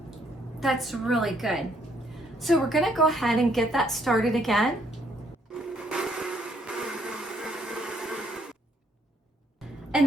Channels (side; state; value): both; normal; correlation 0.68